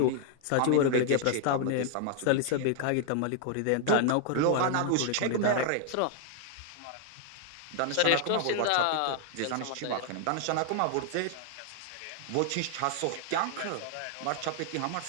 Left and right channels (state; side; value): different; both; correlation 0.00